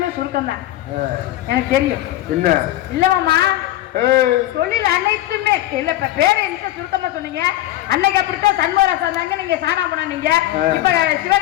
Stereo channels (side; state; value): right; quieter; 14.6 dB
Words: சுருக்கம் தான் எனக்கு தெரியும். என்ன இல்ல மாமா தொழில் அனைத்துமே இல்ல. இப்ப பேரை என்ன சுருக்கமா சொன்னீங்க. அன்னைக்கு அப்படித்தான் சண்முகராசா இருந்தாங்க, நீங்க சாணா போனீங்க. இப்ப